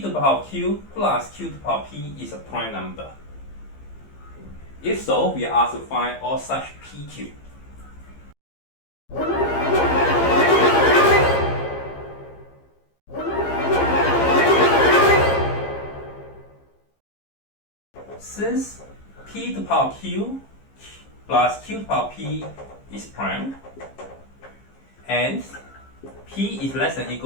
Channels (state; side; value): late; right; 15 ms